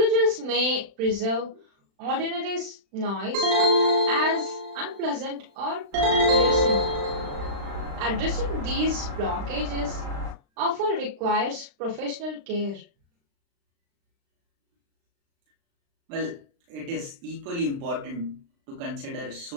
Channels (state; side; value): late; left; 36 ms